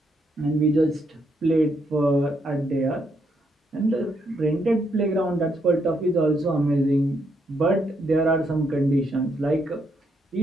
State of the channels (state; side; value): normal; both; correlation 0.76